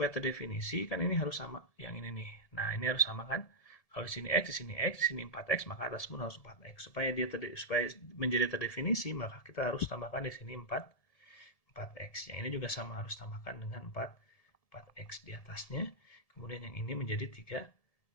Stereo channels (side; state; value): right; late; 1.7 ms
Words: terdefinisi kan ini harus sama yang ini nih. Nah ini harus sama kan? Kalau di sini x, di sini x, di sini 4x, maka atas pun harus 4x. Supaya supaya menjadi terdefinisi, maka kita harus tambahkan di sini 4x. Yang ini juga sama harus tambahkan dengan 4x di atasnya. Kemudian yang ini menjadi